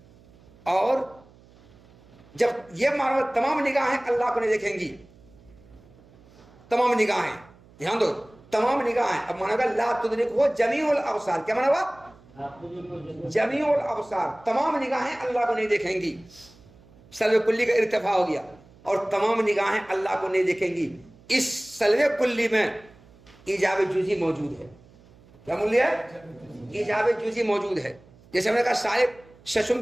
اور جب یہ مانا تمام نگاہیں اللہ کو نہیں دیکھیں گی، تمام نگاہیں، دھیان دو، تمام نگاہیں. اب مانا کہ لا تدرک ہو جمیع الابصار. کیا مانا ہوا؟ جمیع الابصار، تمام نگاہیں اللہ کو نہیں دیکھیں گی. سلب کلی کا ارتفاع ہو گیا اور تمام نگاہیں اللہ کو نہیں دیکھیں گی. اس سلب کلی میں ایجاب جزئی موجود ہے. کیا موجود ہے؟ ایجاب جزئی موجود ہے. جیسے ہم نے کہا صاحب ششم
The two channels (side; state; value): right; noise; hum, 26 dB below the sound